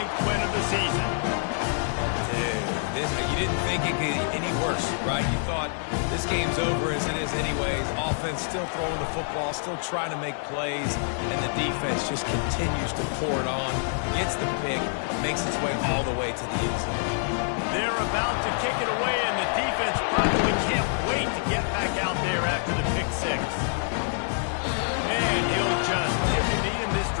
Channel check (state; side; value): silent; right; digital silence